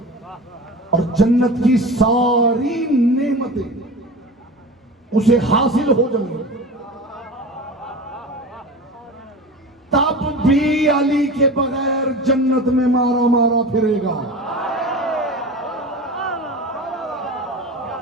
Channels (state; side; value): normal; both; correlation 0.32